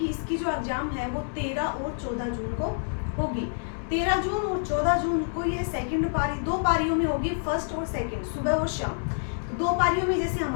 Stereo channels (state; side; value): silent; right; digital silence